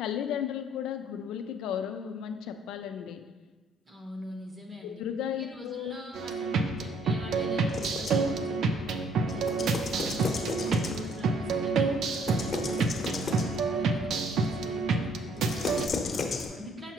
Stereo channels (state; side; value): normal; both; correlation 0.62